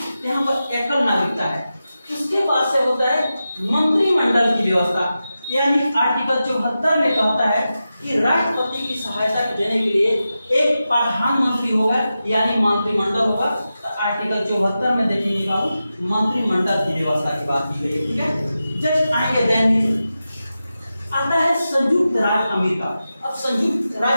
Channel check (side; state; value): both; inverted; correlation -0.92